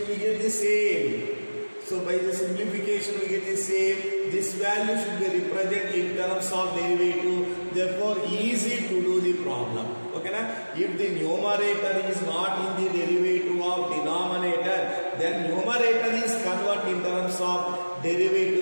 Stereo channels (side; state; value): both; inverted; correlation -1.00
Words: we get the same. So by the simplification we get the same. This value should be represented in terms of derivative. Therefore easy to do the problem. Okay na? If the numerator is not in the derivative of denominator, then numerator is converted in terms of